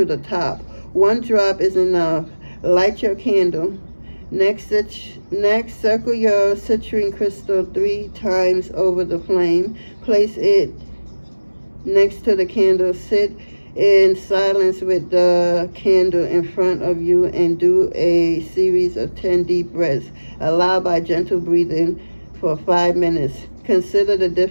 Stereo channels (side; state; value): both; inverted; correlation -1.00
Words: the top. One drop is enough. Light your candle. Next, circle your citrine crystal 3 times over the flame. Place it next to the candle. Sit in silence with the candle in front of you and do a series of 10 deep breaths. Allow by gentle breathing for 5 minutes. Consider the